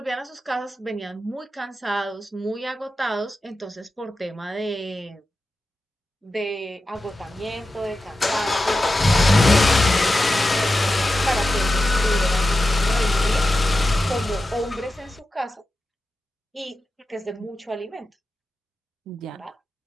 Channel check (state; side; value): normal; both; correlation 0.92